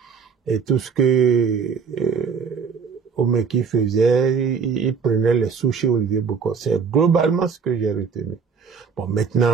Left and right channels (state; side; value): quieter; left; 5.8 dB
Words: et tout ce que Houmeki faisait, il prenait les sous chez Olivier Bokor. C'est globalement ce que j'ai retenu. Bon,